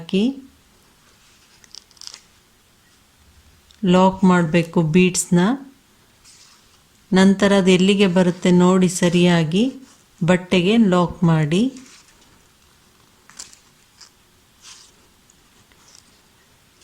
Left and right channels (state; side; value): identical; both; correlation 1.00